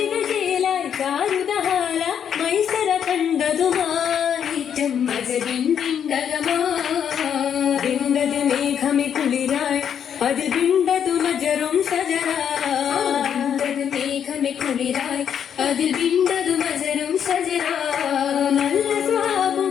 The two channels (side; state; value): right; quieter; 8.4 dB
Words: ചേലായി ചാരുതഹാല മൈസര കണ്ടതുമാറ്റം വിണ്ടത് മേഘമി കുളിരായി അതിൽ വിണ്ടതു മജറും സജറാ മേഘമി കുളിരായി അതിൽ വിണ്ടതു മജറും സജറാ നല്ല സ്വാപം